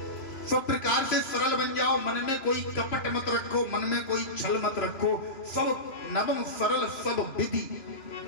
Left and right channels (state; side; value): late; right; 3.1 ms